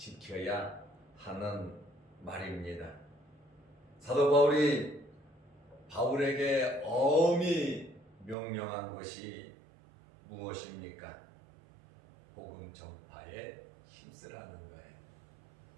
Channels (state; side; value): drops out; left; at 8.3 s